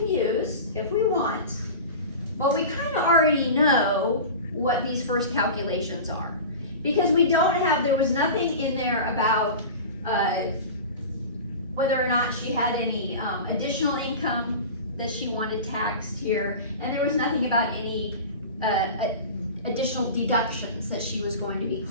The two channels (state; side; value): inverted; both; correlation -0.32